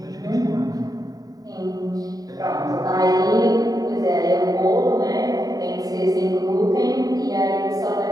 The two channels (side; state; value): left; late; 0.18 ms